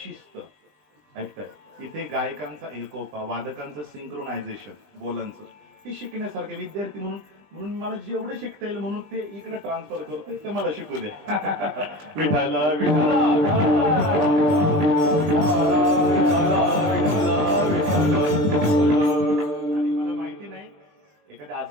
शिस्त ऐकताय, इथे गायकांचा एकोपा, वादकांचं सिंक्रोनायझेशन, बोलांचं, हे शिकण्यासारखं. विद्यार्थी म्हणून म्हणून मला जेवढं शिकता येईल म्हणून ते इकडे ट्रान्सफर करतोय, ते मला शिकू दे. विठाला विठाला आणि मला माहिती नाही, एखाद्या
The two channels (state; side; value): late; left; 20 ms